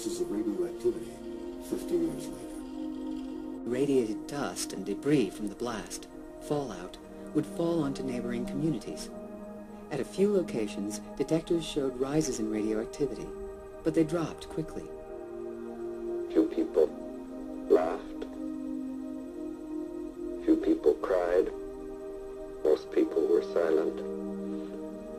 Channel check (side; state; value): both; identical; correlation 1.00